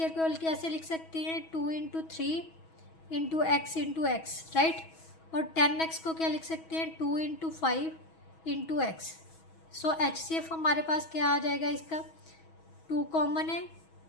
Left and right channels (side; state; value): right; late; 6.2 ms